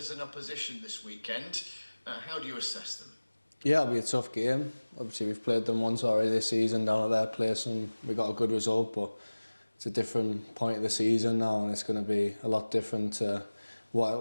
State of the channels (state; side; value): inverted; both; correlation -1.00